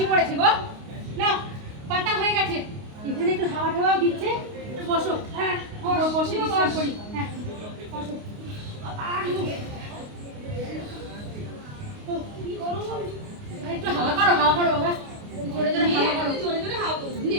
পড়েছে গো। না পাতা হয়ে গেছে, এখানে একটু হাওয়া টাওয়াও দিচ্ছে। বসো, হ্যাঁ বসে বিশ্রাম করি। হ্যাঁ বসো। কি গরম, একটু হাওয়া করো বাবা, জোরে জোরে হাওয়া করো, জোরে জোরে হাওয়া করো।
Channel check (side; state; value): left; late; 29 ms